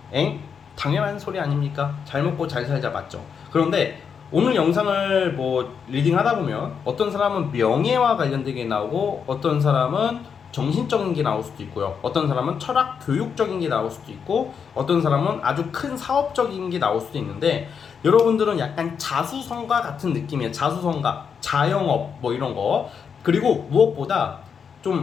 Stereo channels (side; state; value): right; quieter; 6.7 dB